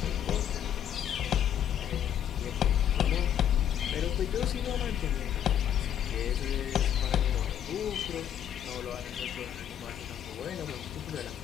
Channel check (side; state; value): right; quieter; 9.8 dB